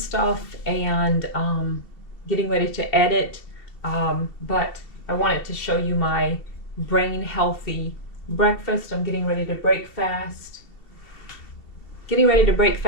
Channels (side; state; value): right; late; 2.8 ms